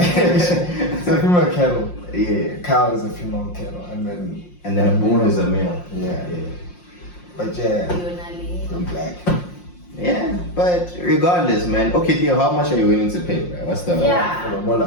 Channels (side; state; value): right; late; 5.6 ms